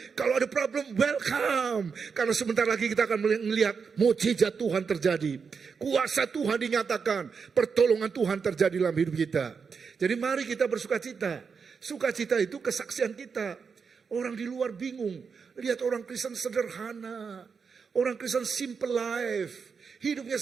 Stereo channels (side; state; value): left; quieter; 5.7 dB